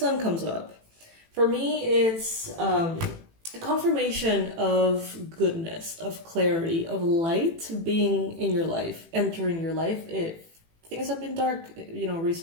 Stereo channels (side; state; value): left; late; 18 ms